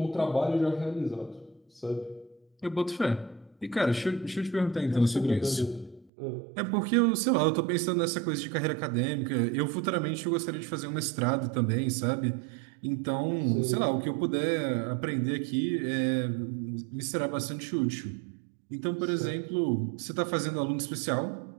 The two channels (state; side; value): drops out; left; at 6.1 s